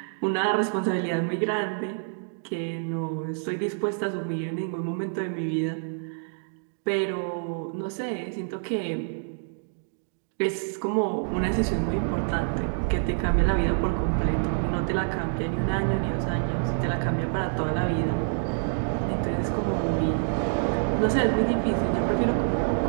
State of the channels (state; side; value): silent; left; digital silence